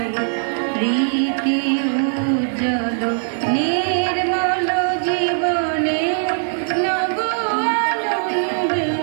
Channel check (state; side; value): silent; left; 66 dB below the other